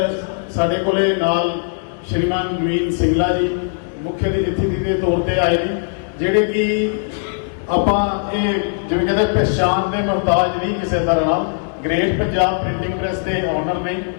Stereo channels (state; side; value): silent; right; digital silence